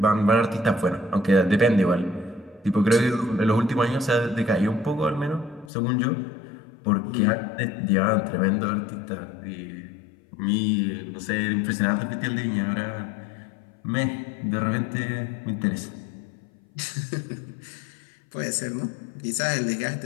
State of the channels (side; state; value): right; drops out; at 5.7 s